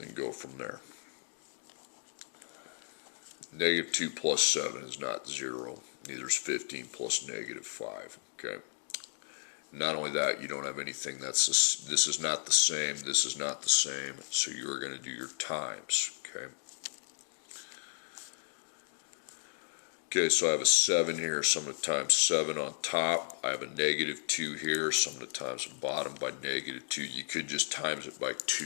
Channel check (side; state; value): right; silent; digital silence